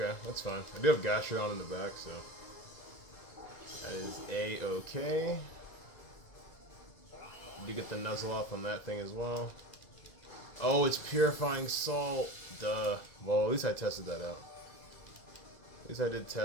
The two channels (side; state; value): right; late; 2.0 ms